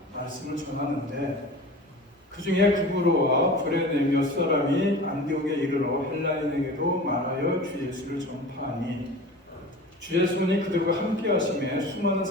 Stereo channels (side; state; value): both; normal; correlation 0.36